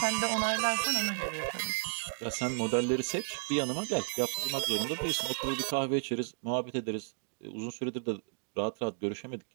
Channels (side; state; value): left; silent; digital silence